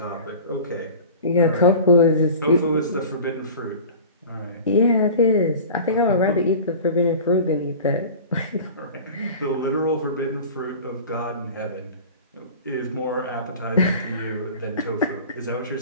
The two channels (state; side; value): inverted; both; correlation -0.38